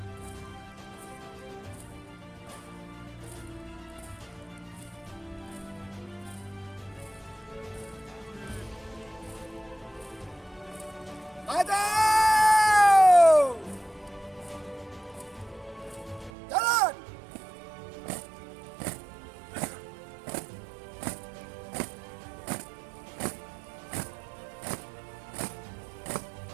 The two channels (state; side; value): drops out; left; at 16.3 s